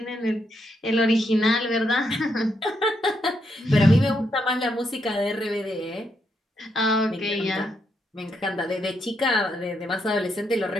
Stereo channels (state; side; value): normal; both; correlation 0.79